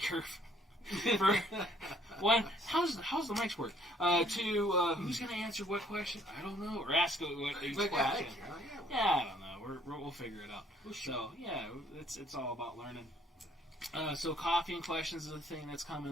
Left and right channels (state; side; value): normal; both; correlation 0.62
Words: curve. For one, how's the mics work? Two, who's going to answer what question? I don't know. Or ask what each question. Yeah, I don't know. We'll figure it out. So yeah, it's all about learning. So coffee and questions is a thing that's